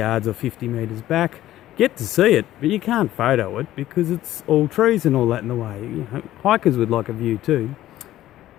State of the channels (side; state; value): right; quieter; 14.0 dB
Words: or 50 metres back. Get to see it, but you can't photo it because it's all trees and all that in the way. You know, hikers would like a view too.